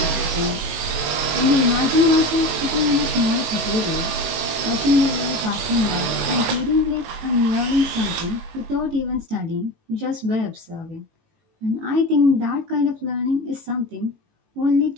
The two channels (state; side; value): late; left; 19 ms